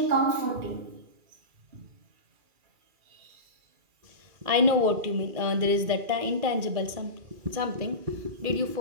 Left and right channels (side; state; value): left; late; 2.4 ms